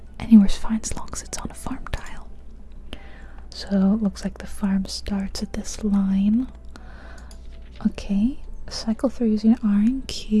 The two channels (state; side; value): identical; both; correlation 1.00